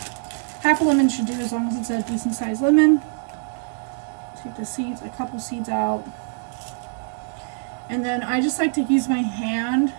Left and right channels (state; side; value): silent; left; 63 dB below the other